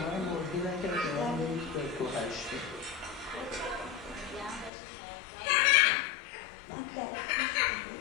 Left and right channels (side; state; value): right; drops out; at 4.7 s